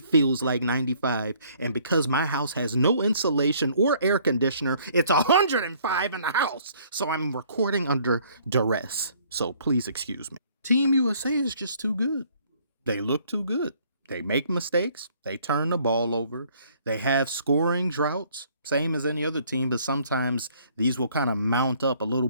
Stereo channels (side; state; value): both; inverted; correlation -0.60